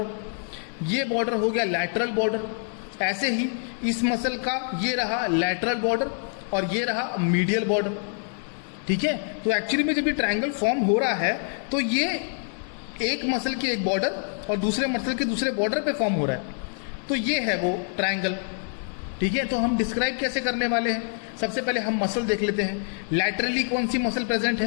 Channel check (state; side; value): silent; right; 56 dB below the other